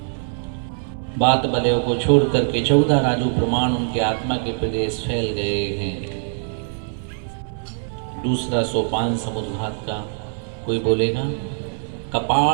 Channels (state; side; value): silent; left; 64 dB below the other